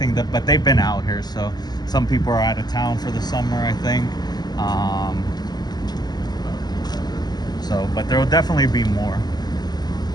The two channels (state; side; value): late; right; 0.20 ms